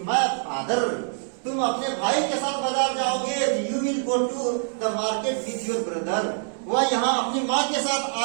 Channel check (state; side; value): silent; left; 62 dB below the other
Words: my father, तुम अपने भाई के साथ बाजार जाओगे, you will go to the market with your brother, वह यहाँ अपनी माँ के साथ